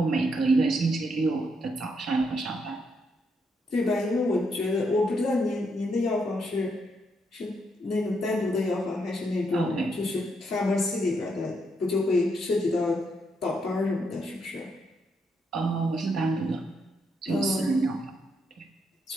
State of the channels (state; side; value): normal; both; correlation 0.78